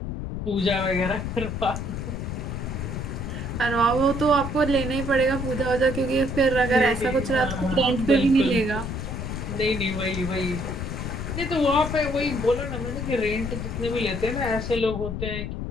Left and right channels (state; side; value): noise; left; rumble, 5 dB below the sound